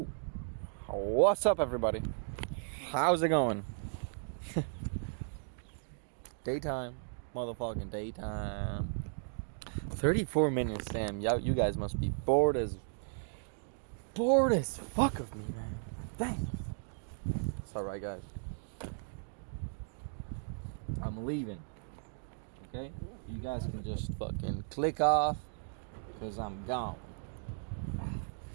what's up, everybody? How's it going? Daytime. Motherfucking daytime. 34 minutes, damn. You guys must be bored as fuck of me, man. Dang. It's alright, guys. I'm leaving. Okay? You guys can just fucking click off, because I'm gone.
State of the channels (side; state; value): left; silent; digital silence